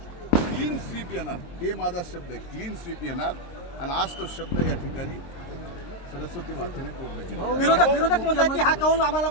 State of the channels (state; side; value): late; right; 23 ms